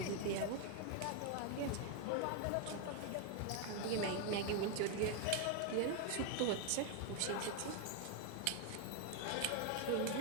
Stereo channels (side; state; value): both; different; correlation 0.01